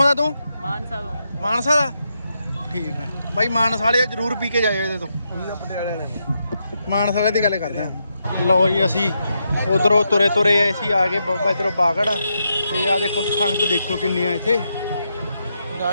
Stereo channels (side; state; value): both; inverted; correlation -0.83